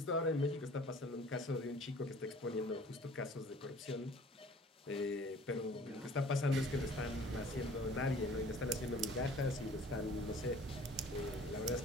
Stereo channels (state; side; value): normal; both; correlation 0.49